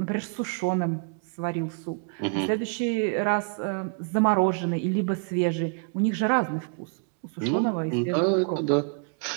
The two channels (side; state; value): left; quieter; 39.3 dB